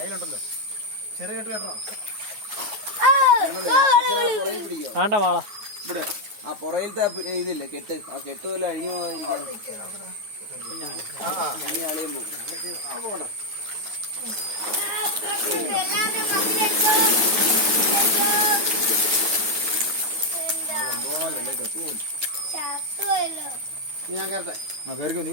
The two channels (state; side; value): late; left; 9.4 ms